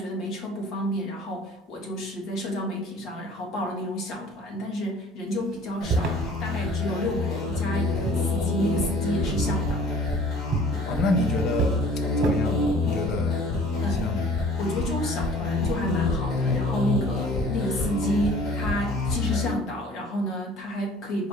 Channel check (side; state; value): both; normal; correlation 0.49